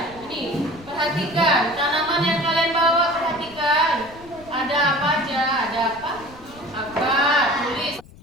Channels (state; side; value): noise; left; rumble, 22 dB below the sound